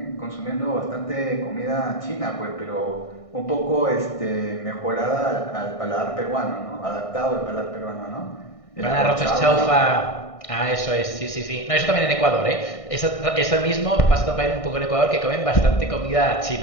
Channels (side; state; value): right; late; 1.6 ms